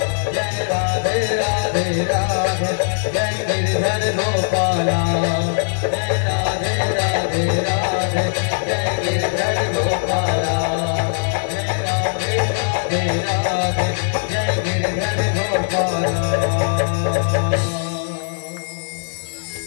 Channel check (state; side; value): silent; right; digital silence